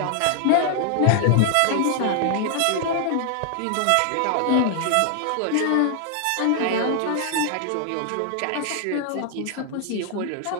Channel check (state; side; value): different; both; correlation 0.00